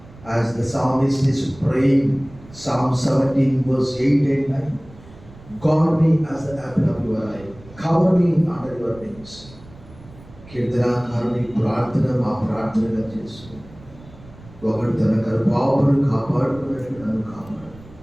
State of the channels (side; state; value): right; noise; rumble, 21 dB below the sound